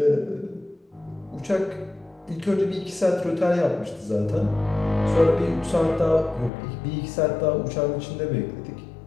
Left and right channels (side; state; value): right; drops out; at 6.5 s